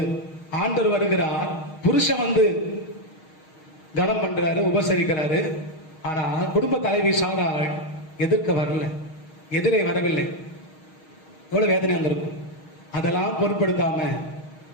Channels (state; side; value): late; right; 6.4 ms